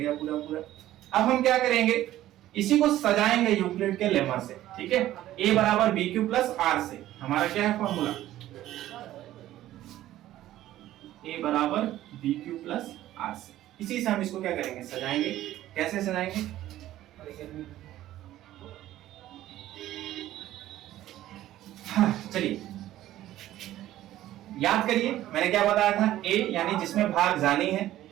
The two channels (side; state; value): left; quieter; 14.0 dB